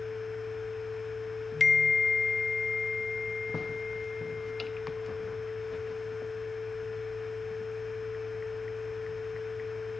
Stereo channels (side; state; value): right; quieter; 4.3 dB